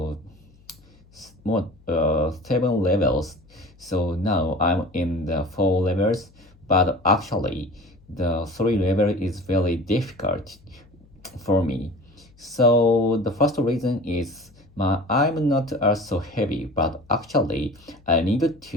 more 7 levels. So now I'm in the 4 levels, but actually the 3 level is very difficult for me. So the first reason is I'm not so heavy, but actually I need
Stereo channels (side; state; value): left; noise; hum, 28 dB below the sound